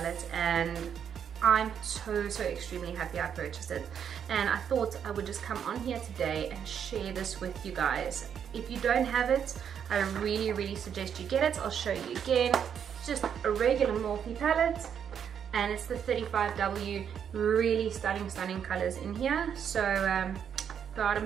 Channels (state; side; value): quieter; left; 8.1 dB